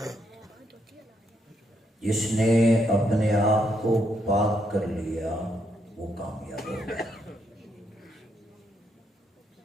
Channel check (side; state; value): both; normal; correlation 0.77